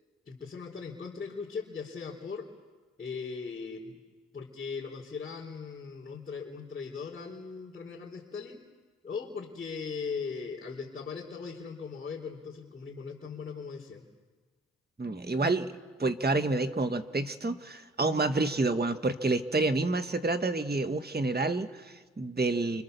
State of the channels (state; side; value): normal; both; correlation 0.52